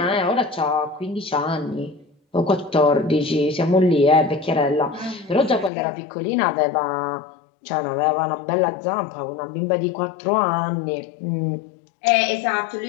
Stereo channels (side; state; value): right; drops out; at 5.7 s